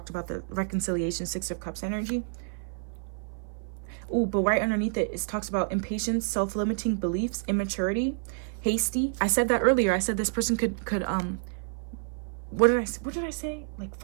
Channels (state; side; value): silent; left; 55 dB below the other